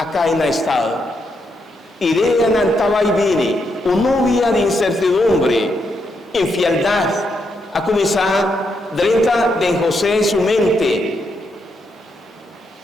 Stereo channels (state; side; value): normal; both; correlation 0.80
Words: en el estado. Y de ella no estaba y viene, una novia de incertidumbre, infialdad, a comenzar dentro de José su mente.